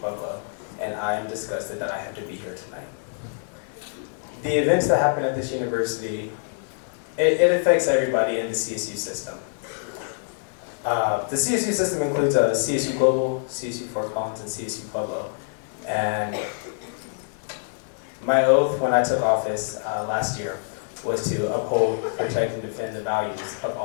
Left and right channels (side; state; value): right; silent; digital silence